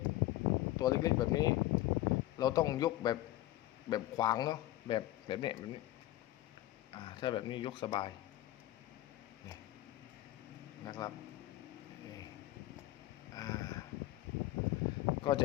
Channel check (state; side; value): quieter; right; 15.6 dB